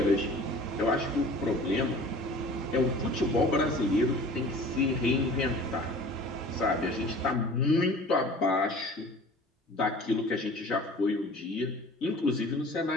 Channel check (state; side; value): normal; both; correlation 0.44